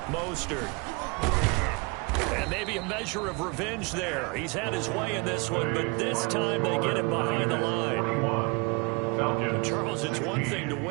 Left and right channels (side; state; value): left; quieter; 27.9 dB